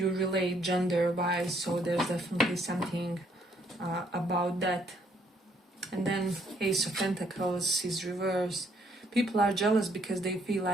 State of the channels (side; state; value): both; normal; correlation 0.68